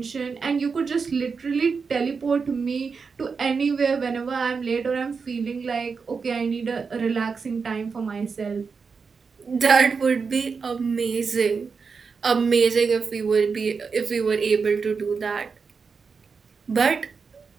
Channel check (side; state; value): left; quieter; 5.3 dB